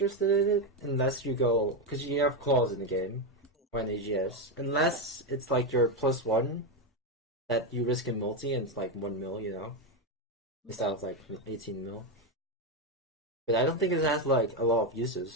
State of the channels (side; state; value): both; normal; correlation 0.08